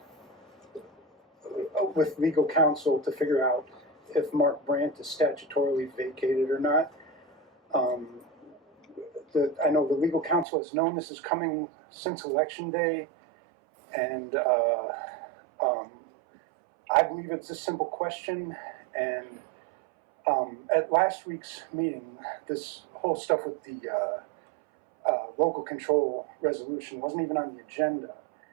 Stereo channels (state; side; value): drops out; left; at 10.5 s